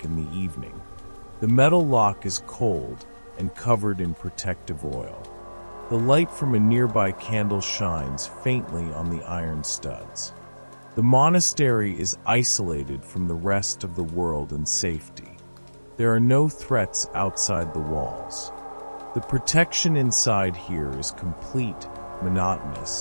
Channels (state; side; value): inverted; both; correlation -1.00